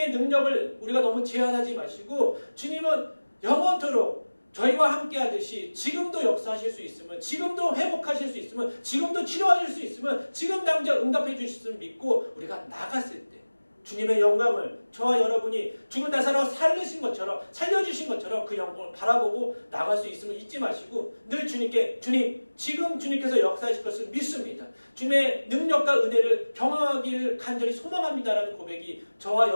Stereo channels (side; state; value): both; inverted; correlation -1.00